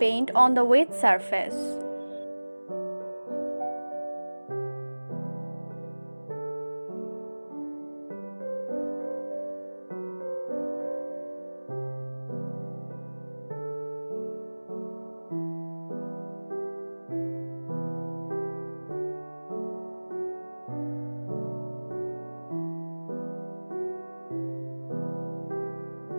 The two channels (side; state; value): both; inverted; correlation -1.00